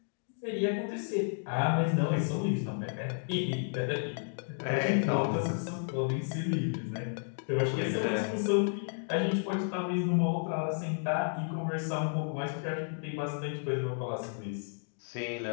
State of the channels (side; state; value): right; silent; digital silence